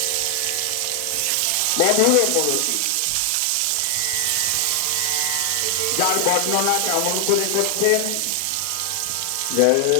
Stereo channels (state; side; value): different; both; correlation 0.00